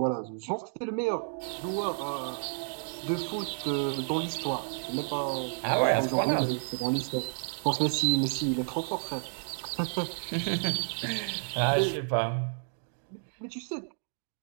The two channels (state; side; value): silent; left; digital silence